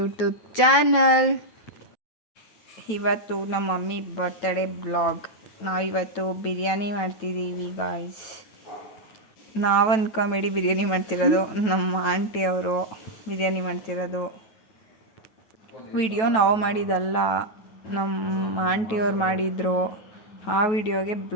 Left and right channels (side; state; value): right; late; 9.2 ms